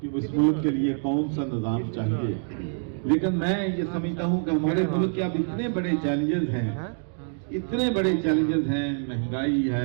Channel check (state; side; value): silent; left; 61 dB below the other